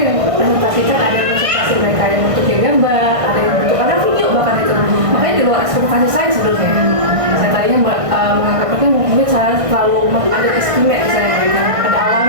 yang presentasikan ada presentasi mereka yang bentuknya gambar ada yang bentuk ada video bahkan itu makanya di luar ekspektasi saya sebenarnya saya tadinya menganggapnya mungkin saya terlalu ada istimewa misalnya mereka pada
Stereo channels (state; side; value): late; left; 1.6 ms